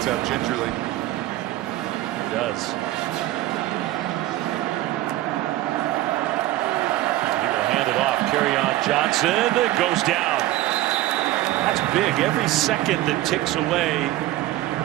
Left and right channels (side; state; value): left; quieter; 15.8 dB